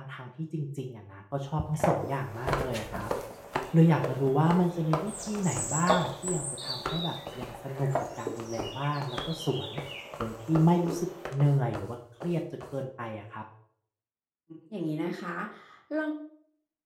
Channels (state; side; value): identical; both; correlation 1.00